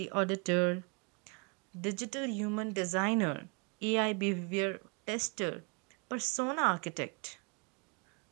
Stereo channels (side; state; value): left; quieter; 33.3 dB